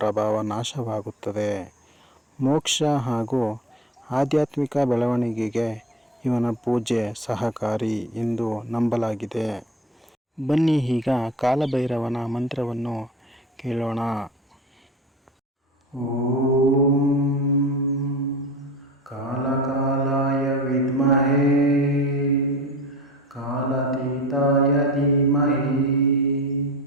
ನಾಶವಾಗುತ್ತದೆ. ಮೋಕ್ಷ ಹಾಗೂ ಆಧ್ಯಾತ್ಮಿಕ ಬೆಳವಣಿಗೆಗೆ ಇವನ ಪೂಜೆ ಸಹಕಾರಿ ಎಂದು ನಂಬಲಾಗಿದೆ. ಬನ್ನಿ ಈಗ ಕಾಲಭೈರವನ ಮಂತ್ರವನ್ನು ಕೇಳೋಣ. ಓಂ ಕಾಲಕಾಲಾಯ ವಿದ್ಮಹೇ ಕಾಲಾತೀತಾಯ ಧೀಮಹಿ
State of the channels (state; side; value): normal; both; correlation 0.36